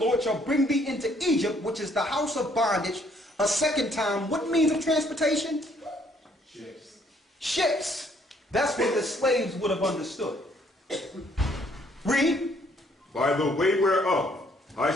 shall bring thee into Egypt, which is the house of bondage, a second time. What means of transportation? Ships. Ships. That's what the slaves would have understood. Read. By the way whereof I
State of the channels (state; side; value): normal; both; correlation 0.65